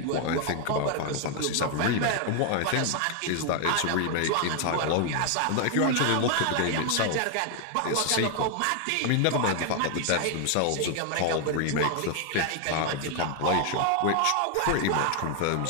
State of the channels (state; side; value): different; both; correlation 0.00